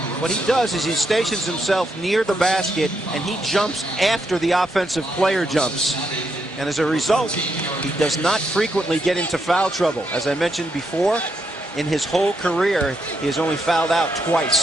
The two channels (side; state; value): both; normal; correlation 0.79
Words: What he does is he stations himself near the basket, and he jumps after the offensive player jumps. And as a result, he does not frequently get into foul trouble. As I mentioned before, in his whole career, he has only fouled out